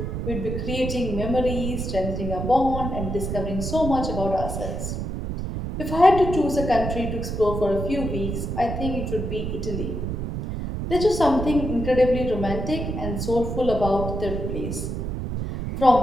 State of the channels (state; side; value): noise; right; rumble, 4 dB below the sound